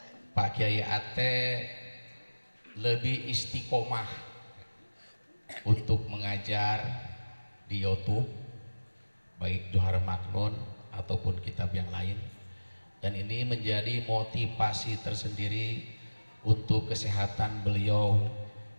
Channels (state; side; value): inverted; both; correlation -1.00